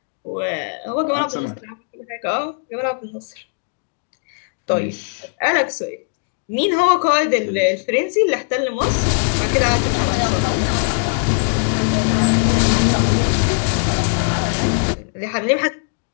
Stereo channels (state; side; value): silent; right; digital silence